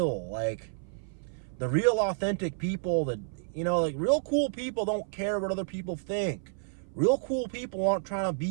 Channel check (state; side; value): silent; left; 56 dB below the other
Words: Like, the real authentic people that, like real cool people don't care what other people think. Real cool people aren't trying to